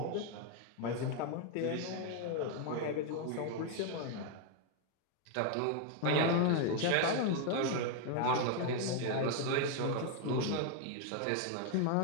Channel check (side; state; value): both; different; correlation 0.00